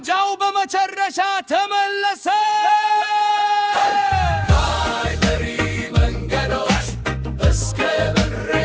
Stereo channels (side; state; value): both; identical; correlation 1.00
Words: በመጨረሻ ተመለሰ ካይበሪ መንገዶች እስከ